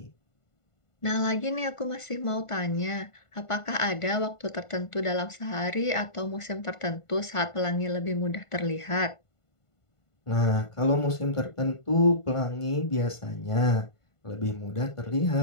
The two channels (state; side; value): late; right; 1.5 ms